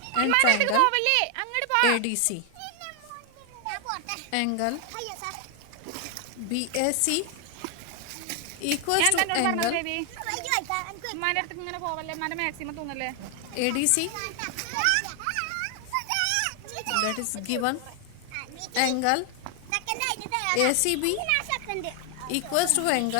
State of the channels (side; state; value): both; different; correlation 0.00